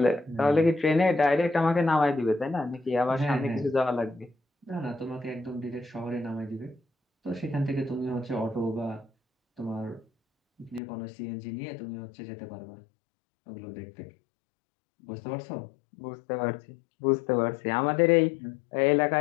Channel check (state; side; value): drops out; right; at 10.8 s